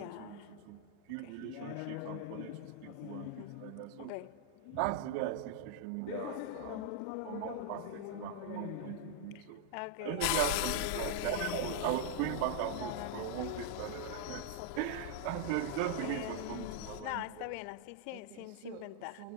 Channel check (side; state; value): both; different; correlation -0.01